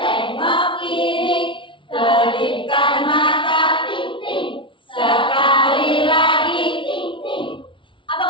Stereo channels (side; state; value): right; late; 0.25 ms